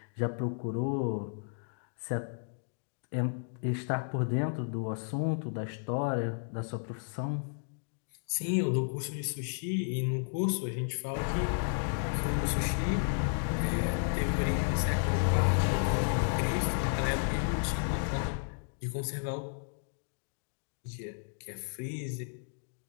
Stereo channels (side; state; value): right; silent; digital silence